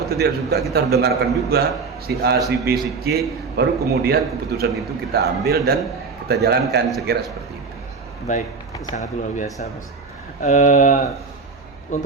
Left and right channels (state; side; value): quieter; left; 4.7 dB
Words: tidak suka kita harus dengarkan juga si A, si B, si C, baru kemudian keputusan itu kita ambil dan kita jalankan, sekira seperti itu. Baik, sangat luar biasa, Bos.